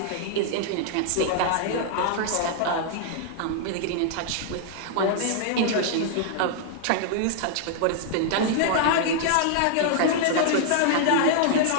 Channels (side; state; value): both; different; correlation -0.01